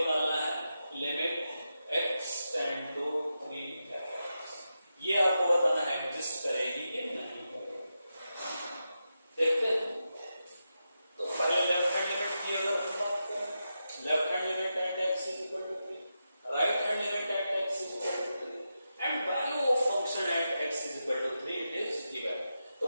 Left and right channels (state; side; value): inverted; both; correlation -0.89